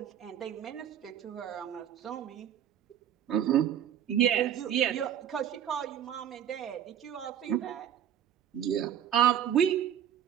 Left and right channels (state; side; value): quieter; left; 9.9 dB